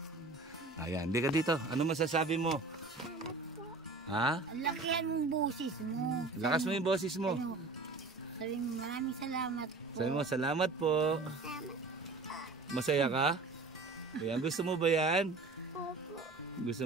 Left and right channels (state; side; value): quieter; left; 3.6 dB